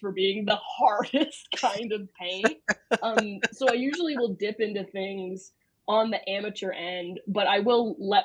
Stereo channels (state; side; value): identical; both; correlation 1.00